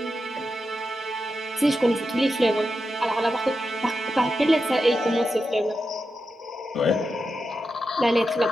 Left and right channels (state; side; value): normal; both; correlation 0.88